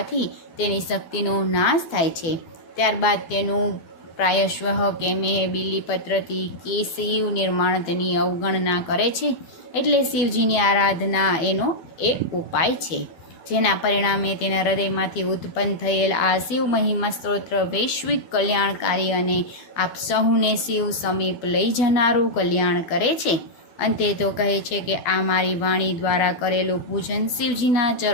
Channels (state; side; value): late; right; 12 ms